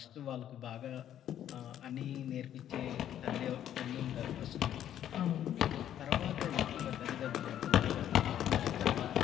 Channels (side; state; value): right; quieter; 10.8 dB